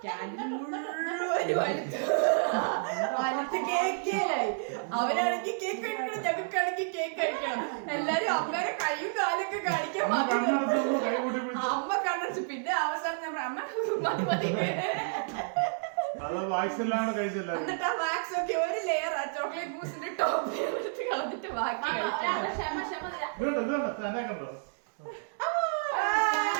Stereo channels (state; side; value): silent; left; digital silence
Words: അവരാണെങ്കിൽ കേക്ക് കഴിക്കണം, ഞങ്ങൾക്കാണെങ്കിൽ കേക്ക് കഴിക്കണം. എല്ലാരും അമ്മയുടെ കൈയും കാലൊക്കെ കാണിക്കാൻ അമ്മ കണ്ടു. പിന്നെ അവസാനം ഞാൻ അമ്മ മതി മതി എന്നിട്ട് ആ വാക്സ് ഒക്കെ ഒരു ലെയർ ആ ചോക്ലേറ്റ് മൂസിന്റെ ടോപ്പ് കളഞ്ഞിട്ട് ബാക്കി